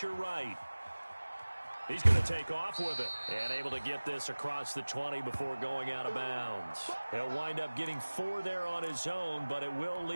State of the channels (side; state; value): both; inverted; correlation -1.00